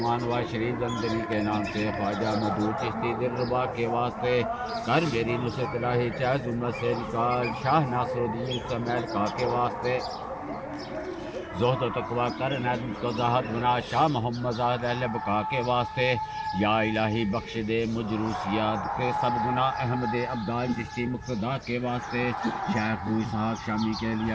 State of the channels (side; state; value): both; identical; correlation 1.00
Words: و شریف زندگی کے نام سے خواجہ مدعو چشتی دلربا کے واسطے، کر میری نصرت الہی چاہے ظلمت سے نکال، شاہ ناصر الدین سمیل کا کے واسطے، زہد و تقویٰ کر عنایت مجھ کو زاہد بنا، شاہ محمد زاہد اہل بقا کے واسطے، یا الہی بخش دے مجھ روسیات کے سب گناہ احمد عبدال چشتی مقتدا کے واسطے، شیخ ابو اسحاق شامی کے لیے